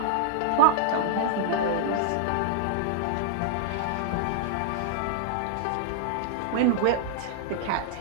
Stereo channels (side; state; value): both; different; correlation -0.01